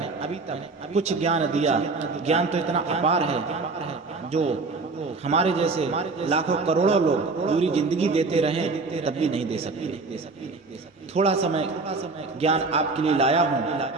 कुछ ज्ञान दिया। ज्ञान तो इतना अपार है जो हमारे जैसे लाखों करोड़ों लोग पूरी जिंदगी देते रहे तब भी नहीं दे सकते। थोड़ा समय ज्ञान आपके लिए लाया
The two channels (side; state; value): left; quieter; 3.9 dB